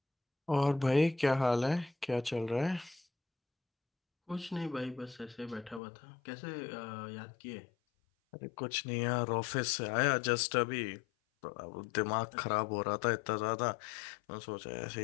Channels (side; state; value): right; drops out; at 5.8 s